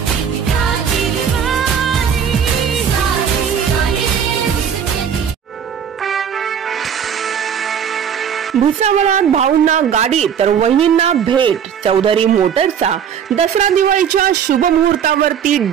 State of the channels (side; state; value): left; quieter; 8.1 dB